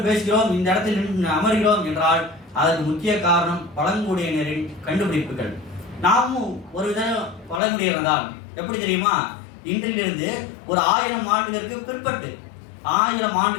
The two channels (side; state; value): right; drops out; at 7.6 s